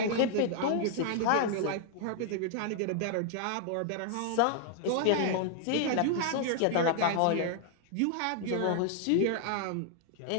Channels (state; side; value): different; both; correlation 0.00